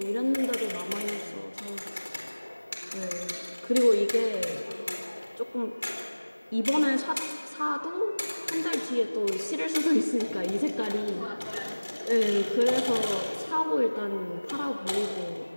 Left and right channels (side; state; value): both; inverted; correlation -1.00